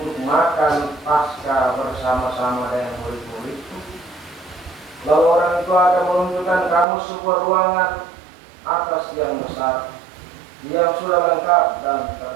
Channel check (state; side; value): drops out; left; at 6.9 s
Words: makan Paskah bersama-sama dengan murid-muridku?" Lalu orang itu akan menunjukkan kamu sebuah ruangan atas yang besar, yang sudah lengkap dan